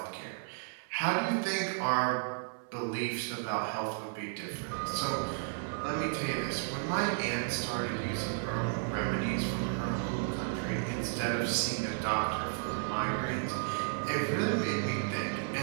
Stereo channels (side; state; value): left; silent; 56 dB below the other